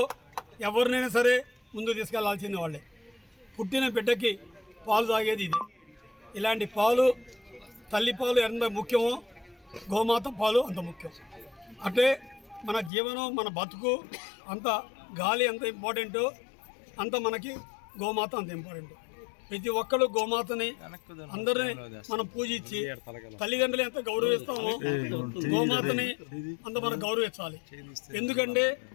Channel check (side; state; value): right; drops out; at 12.9 s